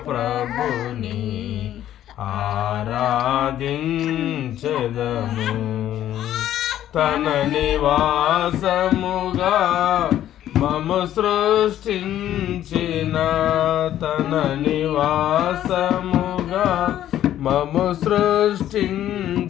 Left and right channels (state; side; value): quieter; right; 11.9 dB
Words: ప్రభుని ఆరాధించెదము. తన నివాసముగా మము సృష్టించిన, తన నివాసముగా మము